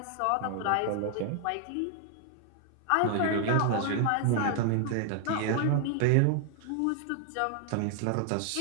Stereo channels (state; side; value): different; both; correlation 0.00